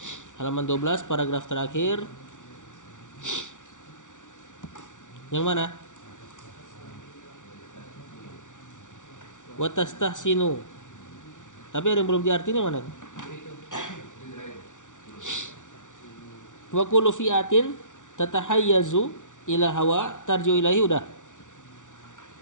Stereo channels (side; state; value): right; late; 0.87 ms